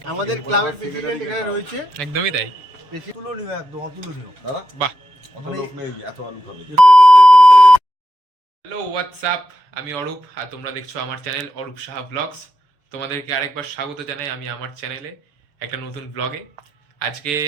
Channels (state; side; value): late; left; 7.0 ms